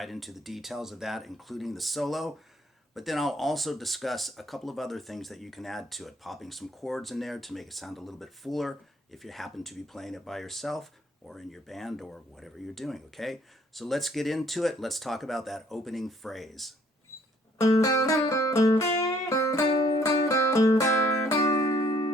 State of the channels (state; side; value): normal; both; correlation 0.63